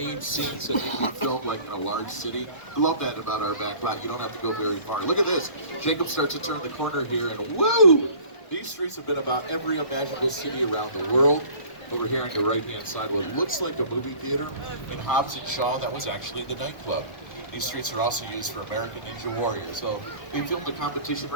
scenes that need to be filmed like in a large city, I love that about our back lot. You don't have to go very far. Look at this. Jacob starts to turn the corner here and woo! These streets have been about every imaginable city around the world. Over here on your right-hand side, what looks like a movie theater in Hobbs and Shaw, that was actually the nightclub. These streets are also used for American Ninja Warrior. So they film the competition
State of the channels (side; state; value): right; late; 1.4 ms